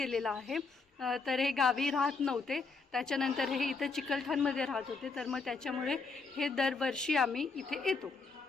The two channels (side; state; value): right; quieter; 4.3 dB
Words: आहे. तर हे गावी राहत नव्हते, त्याच्यानंतर हे इथं चिकलठाणमध्ये राहत होते. तर मग त्याच्यामुळे हे दरवर्षी आम्ही इथे येतो.